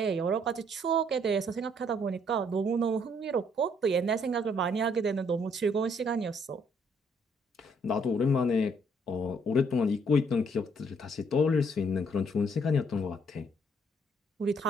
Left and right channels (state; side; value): normal; both; correlation 0.66